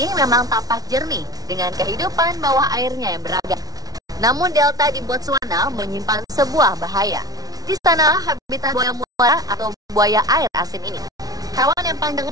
memang tampak jernih dengan kehidupan bawah airnya yang beragam. Namun delta di Botswana menyimpan sebuah bahaya. Di sana habitat buaya muara atau buaya air asin ini. Hewan yang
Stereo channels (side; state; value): left; late; 0.18 ms